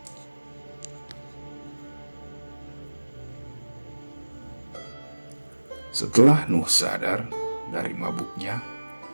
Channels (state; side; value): inverted; both; correlation -1.00